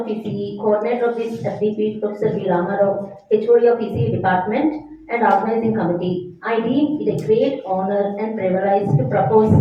ECE, coordinator of this FDP, Professor V. Ramarao, HOD of ECE Department, and organizing committee, I deem it a great honor and privilege to propose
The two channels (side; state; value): both; identical; correlation 1.00